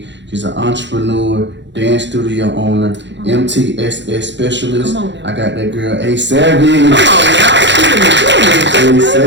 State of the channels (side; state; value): left; late; 0.52 ms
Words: She's an entrepreneur, dance studio owner, MTSS specialist. I got that girl, A.SAVAGE.